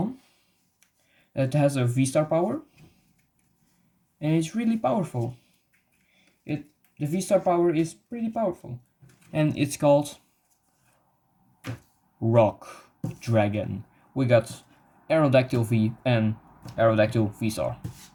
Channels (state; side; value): identical; both; correlation 1.00